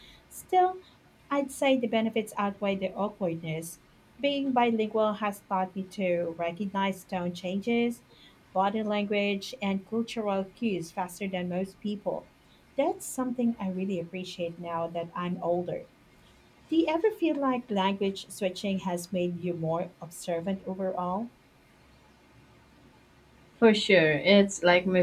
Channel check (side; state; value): both; identical; correlation 1.00